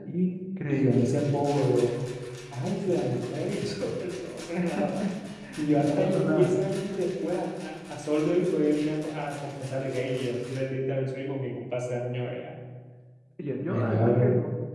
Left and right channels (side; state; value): both; identical; correlation 1.00